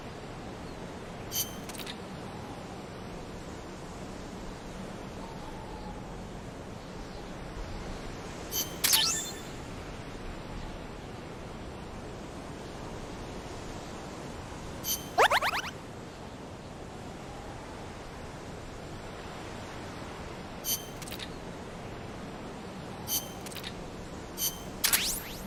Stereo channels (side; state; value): both; identical; correlation 1.00